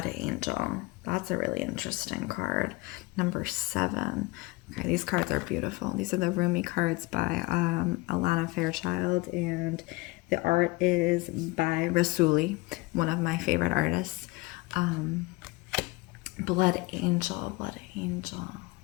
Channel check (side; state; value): right; quieter; 22.9 dB